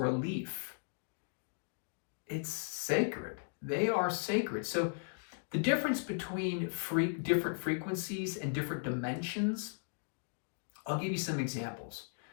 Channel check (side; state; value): right; silent; digital silence